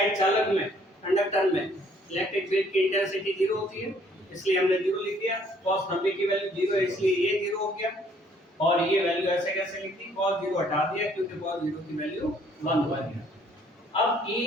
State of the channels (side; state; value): both; normal; correlation 0.62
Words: चालक में कंडक्टर में इलेक्ट्रिक फील्ड की इंटेंसिटी 0 होती है, इसलिए हमने 0 लिख दिया। cos 90 की वैल्यू 0 है इसलिए ये 0 हो गया और ये वैल्यू ऐसे कैसे लिख दी, cos 0 हटा दिया क्योंकि cos 0 की वैल्यू 1 हो गया। अब E